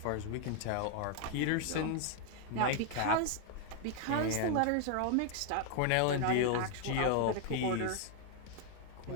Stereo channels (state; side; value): different; both; correlation 0.00